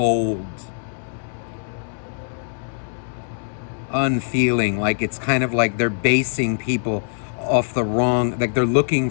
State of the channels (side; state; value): right; silent; digital silence